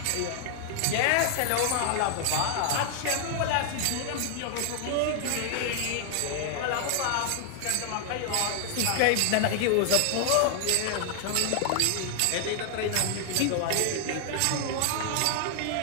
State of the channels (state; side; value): different; both; correlation 0.00